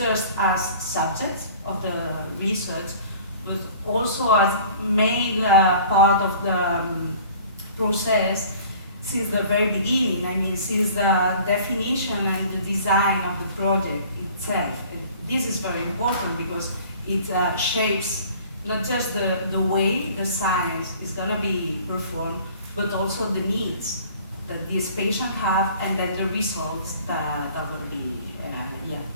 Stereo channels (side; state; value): both; inverted; correlation -0.49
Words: as subjects of the research, but also as main part of the process since the very beginning. I mean, since the definition and the design of the project itself. And this is very important because it shapes not just the way the science is going to be performed, but also the needs that these patients have and then the results that are going to be